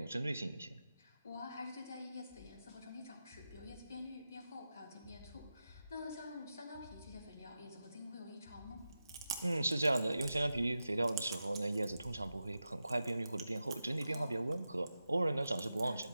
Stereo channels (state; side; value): inverted; both; correlation -0.90